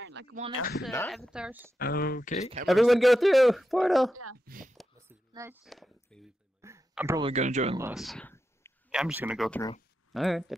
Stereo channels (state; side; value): normal; both; correlation 0.88